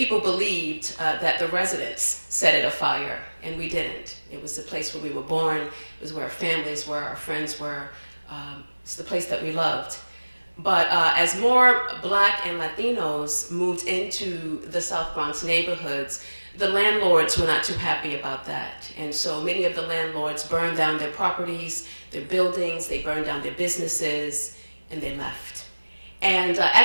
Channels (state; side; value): inverted; both; correlation -1.00